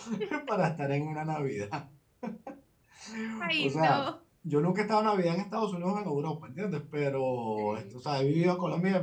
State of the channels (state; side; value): identical; both; correlation 1.00